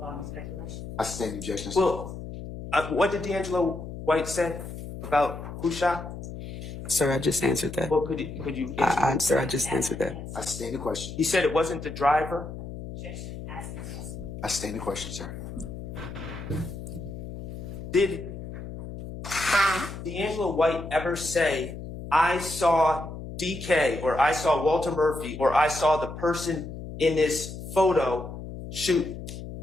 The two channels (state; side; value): noise; left; hum, 9 dB below the sound